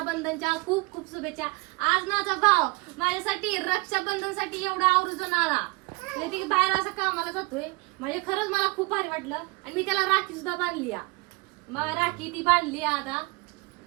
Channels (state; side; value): quieter; left; 26.0 dB